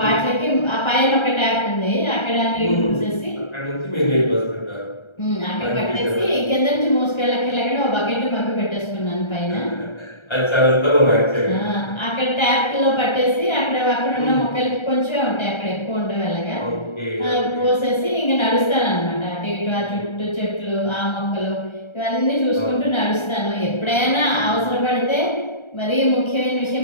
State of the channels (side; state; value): right; late; 1.3 ms